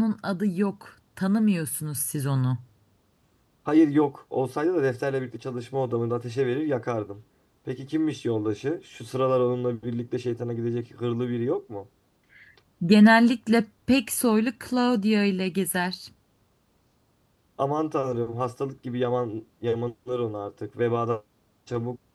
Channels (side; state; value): both; identical; correlation 1.00